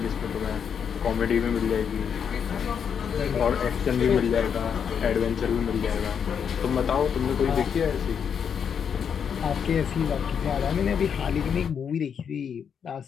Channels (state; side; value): quieter; right; 7.4 dB